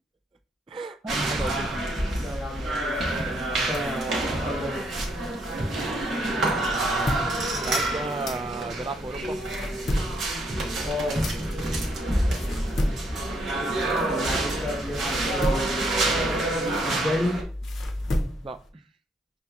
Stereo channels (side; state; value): both; normal; correlation 0.72